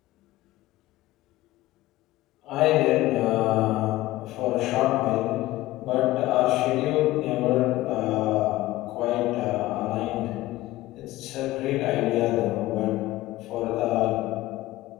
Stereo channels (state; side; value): quieter; right; 17.1 dB